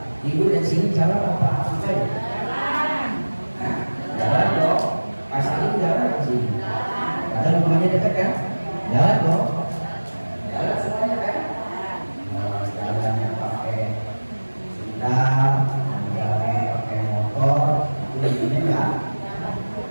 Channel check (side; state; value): both; inverted; correlation -1.00